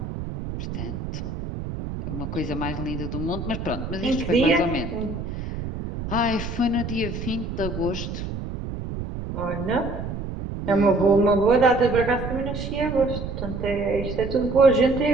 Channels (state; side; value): noise; right; rumble, 6 dB below the sound